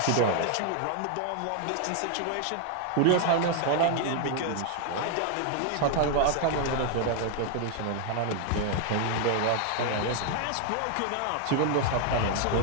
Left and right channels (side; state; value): both; different; correlation 0.00